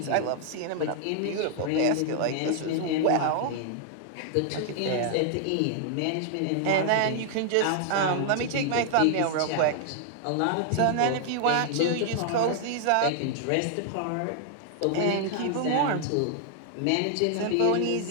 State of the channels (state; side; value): different; both; correlation 0.00